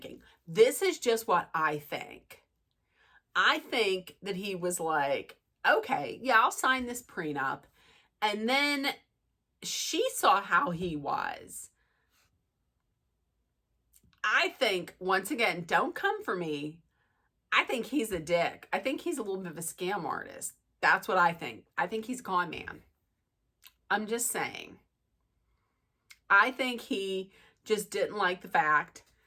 This is just what I think. I think that he was like, okay, yeah, I'll sign this prenup. And then she saw how he was. I think, once again, don't come for me. I think he's a dick. I think he's a little bit of a scam artist. That's what I think. I think he's a con man. I'm just saying. I think he just didn't like the fact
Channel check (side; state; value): both; identical; correlation 1.00